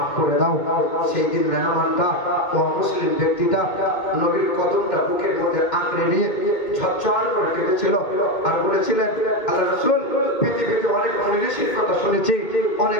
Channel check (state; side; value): late; right; 2.2 ms